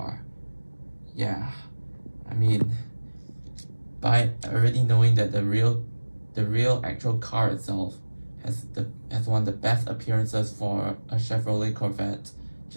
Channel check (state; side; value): inverted; both; correlation -1.00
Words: Yeah, I mean, by already knowing that the real actual car itself has one of the best appearances for a Chevrolet Corvette,